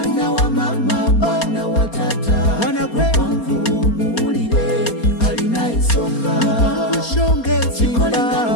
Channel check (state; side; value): late; right; 4.3 ms